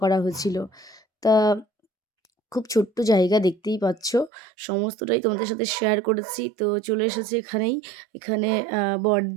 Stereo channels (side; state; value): left; drops out; at 4.3 s